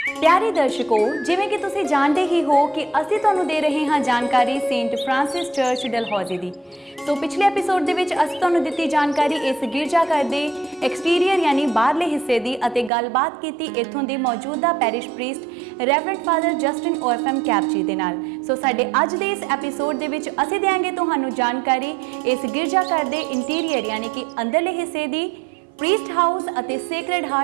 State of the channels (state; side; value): drops out; left; at 12.9 s